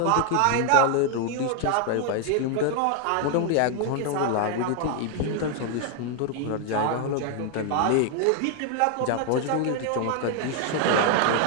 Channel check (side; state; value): both; different; correlation 0.00